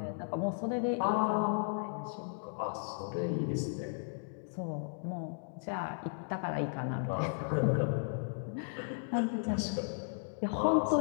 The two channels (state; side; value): silent; right; digital silence